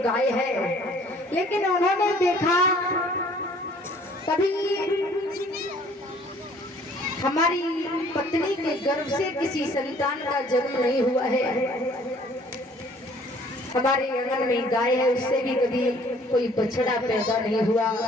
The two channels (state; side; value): normal; both; correlation 0.56